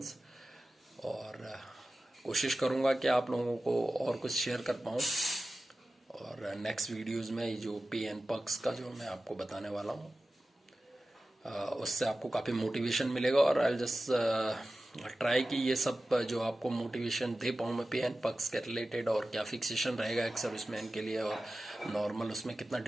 और कोशिश करूँगा कि आप लोगों को और कुछ शेयर कर पाऊँ और नेक्स्ट वीडियोस में जो पे एंड पर्क्स का जो मैं आपको बताने वाला हूँ, उससे आपको काफ़ी मोटिवेशन मिलेगा। और आई जस्ट ट्राई कि ये सब जो आपको मोटिवेशन दे पाऊँ मैं पे एंड पर्क्स के रिलेटेड, और क्या फिक्सेशन रहेगा एक सर्विसमैन के लिए और नॉर्मल उसमें कितना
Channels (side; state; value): both; normal; correlation 0.95